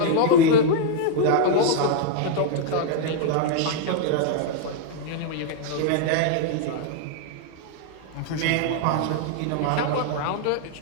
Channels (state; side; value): different; both; correlation 0.00